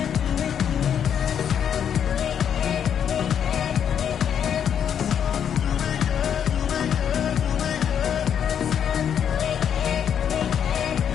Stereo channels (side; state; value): right; quieter; 8.6 dB